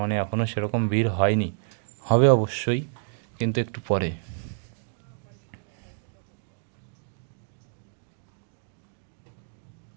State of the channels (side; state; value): left; silent; digital silence